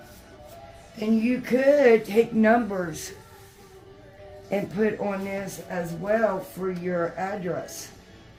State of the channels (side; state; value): both; identical; correlation 1.00